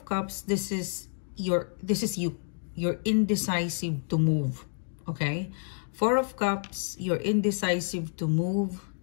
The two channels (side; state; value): right; silent; digital silence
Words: Cups, this is you. You're indecisive to move, okay? 4 of Cups, you're indecisive to move,